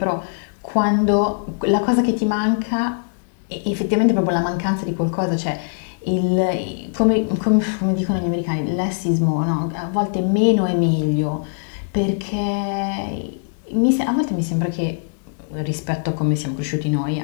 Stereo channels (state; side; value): silent; right; 61 dB below the other